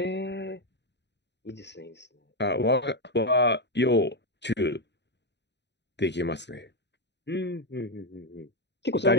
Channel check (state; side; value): late; right; 0.50 ms